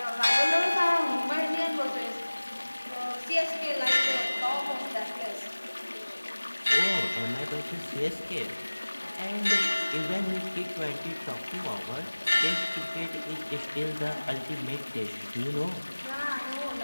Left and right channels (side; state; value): both; inverted; correlation -1.00